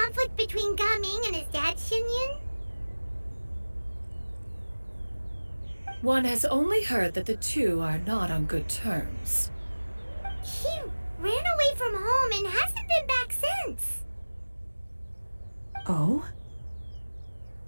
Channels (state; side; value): inverted; both; correlation -1.00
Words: between Gaming and his dad, Xianyun? One has only heard that the two are not on good terms. He ran away from home and hasn't been back since. months. Oh?